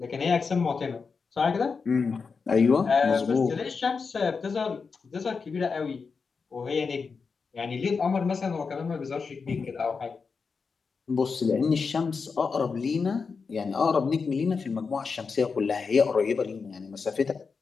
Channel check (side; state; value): right; quieter; 5.1 dB